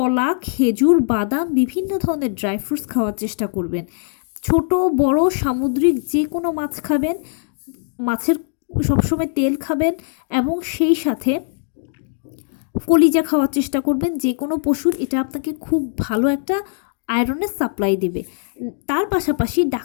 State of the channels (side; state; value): right; silent; digital silence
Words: খেজুর, বাদাম, বিভিন্ন ধরনের ড্রাই ফ্রুটস খাওয়ার চেষ্টা করবেন। ছোট বড় সামুদ্রিক যে কোনো মাছ খাবেন, মাছের সবসময় তেল খাবেন এবং সেই সাথে কলিজা খাওয়ার চেষ্টা করবেন যে কোনো পশুর। এটা আপনাকে খুব ভালো একটা আয়রনের সাপ্লাই দেবে। তার পাশাপাশি